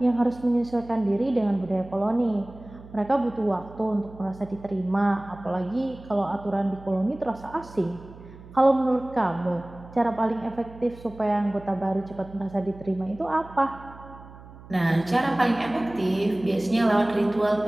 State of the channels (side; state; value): right; noise; hum, 19 dB below the sound